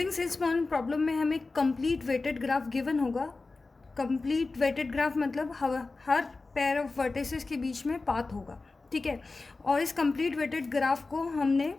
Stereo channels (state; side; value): quieter; right; 3.7 dB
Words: salesman problem में हमें कंप्लीट वेटेड ग्राफ गिवन होगा। कंप्लीट वेटेड ग्राफ मतलब हर पेयर ऑफ वर्टिसेस के बीच में पाथ होगा, ठीक है। और इस कंप्लीट वेटेड ग्राफ को हमने